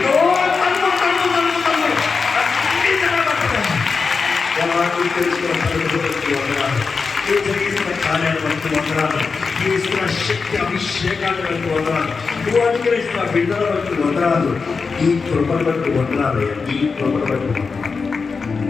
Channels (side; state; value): right; quieter; 4.8 dB